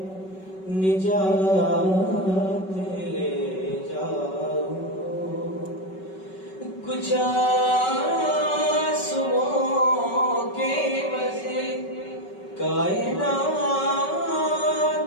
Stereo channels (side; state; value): right; late; 5.3 ms